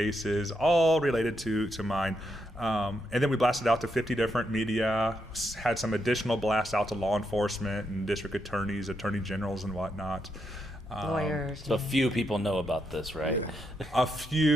all related to mine. And then we blasted out to 50 different media, had some additional blasts out to law enforcement and district attorneys, attorney generals, and whatnot. Lawyers. So few people know about this, right? A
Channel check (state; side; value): normal; both; correlation 0.81